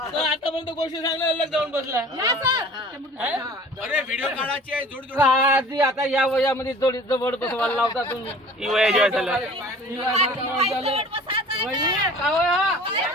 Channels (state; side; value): normal; both; correlation 0.46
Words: गोष्टी सांगल्या अलग जाऊन बसला. अरे व्हिडिओ काढायची आहे जोड जोड. आधी आता या वयामध्ये जोडी जवळ बसवायला लावता तुम्ही. ही वया जेव्हा झालं